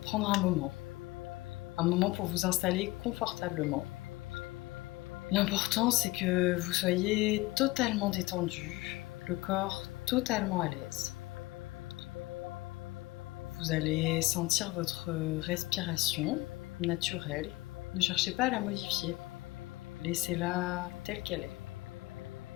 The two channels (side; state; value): right; quieter; 20.6 dB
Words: prendre un moment pour vous installer confortablement. L'important, c'est que vous soyez totalement détendu, le corps totalement à l'aise. Vous allez sentir votre respiration naturelle. Ne cherchez pas à la modifier. Laissez-la telle qu'elle est.